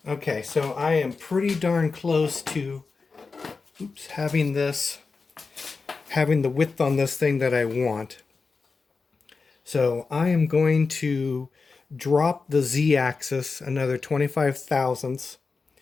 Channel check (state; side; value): quieter; right; 4.4 dB